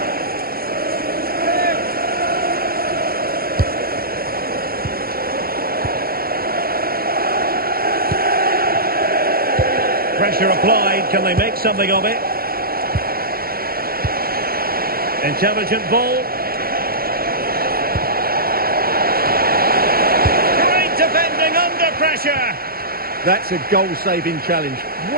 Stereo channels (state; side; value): late; left; 0.44 ms